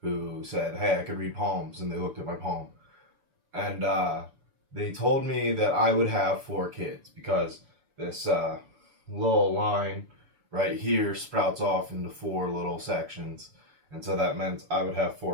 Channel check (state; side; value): late; left; 6.9 ms